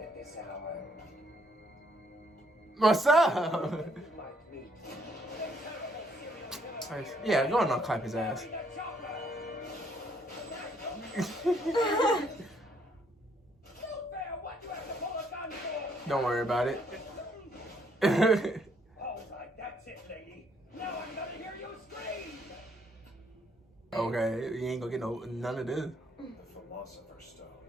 this hour. What's up? You might meet the terrible serial killer. Yeah, go on and clap his ass. What you have to pull a gun for? Don't worry about it. All right, that's it, lady. Now I'm gonna hear you scream. Okay, you ain't gonna get none of this. The Philosopher's Stone.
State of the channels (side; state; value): both; normal; correlation 0.69